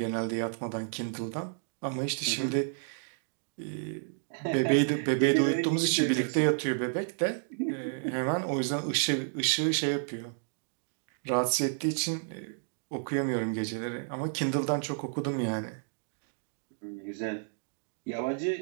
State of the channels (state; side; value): silent; left; digital silence